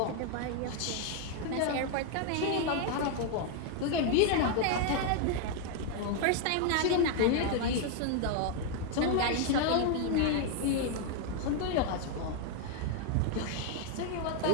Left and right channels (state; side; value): different; both; correlation 0.00